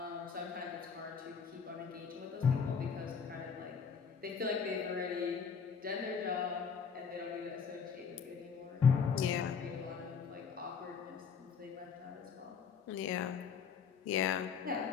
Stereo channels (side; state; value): right; quieter; 6.3 dB